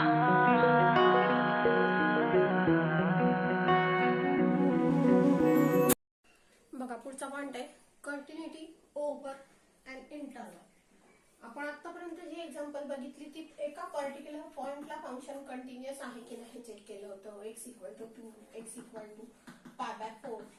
पुढचा पॉइंट आहे कंटिन्युटी ओव्हर अँड इंटरवल. आपण आतापर्यंत जी एक्झाम्पल बघितली ती एका पर्टिक्युलर पॉइंटला फंक्शन कंटिन्युअस आहे की नाही चेक केलं होतं. x = 2, x = π/4.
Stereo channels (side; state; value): both; identical; correlation 1.00